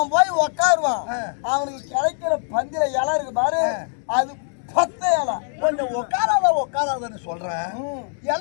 போய் உட்காருவான். அவனுக்கு கிடைக்கிற பந்தில இலை இருக்கு பாரு, அது 10 இலை. கொஞ்சம் உட்காராதன்னு சொல்றேன்.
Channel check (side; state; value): right; silent; 64 dB below the other